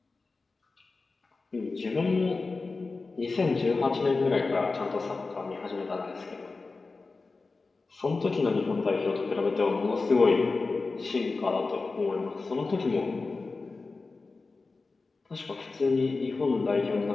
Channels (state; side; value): quieter; right; 3.9 dB